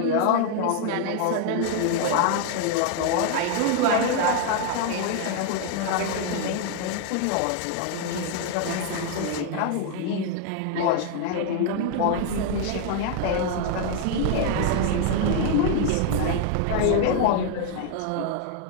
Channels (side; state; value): both; different; correlation 0.00